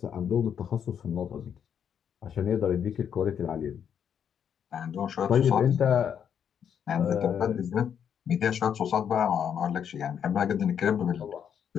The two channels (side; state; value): right; quieter; 8.3 dB